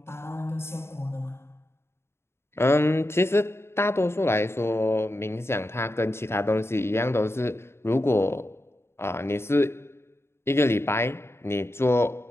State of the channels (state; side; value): late; right; 0.12 ms